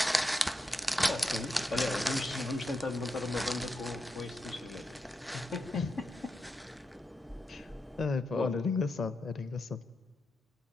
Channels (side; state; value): both; normal; correlation 0.86